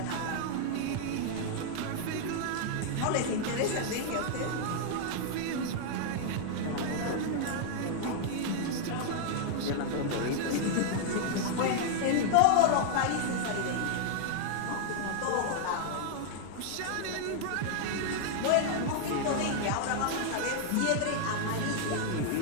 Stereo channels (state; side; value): different; both; correlation -0.01